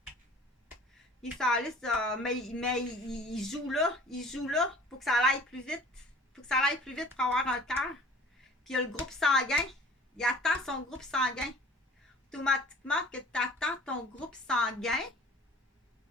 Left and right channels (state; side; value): normal; both; correlation 0.48